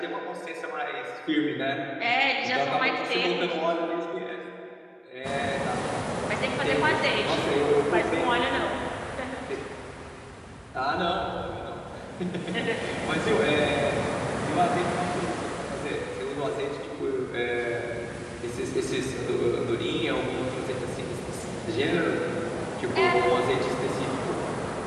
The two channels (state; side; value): identical; both; correlation 1.00